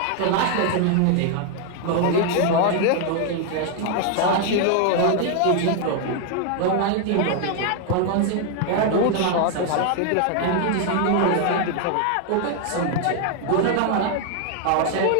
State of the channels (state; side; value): different; both; correlation 0.00